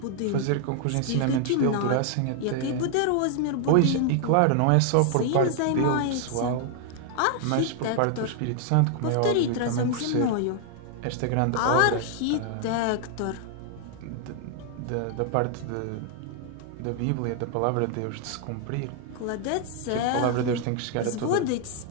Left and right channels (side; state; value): both; different; correlation 0.00